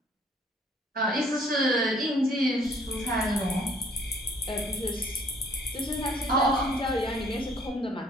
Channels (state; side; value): normal; both; correlation 0.60